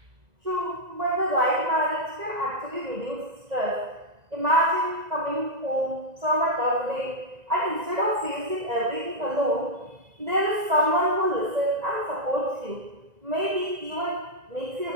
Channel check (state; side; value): late; left; 2.0 ms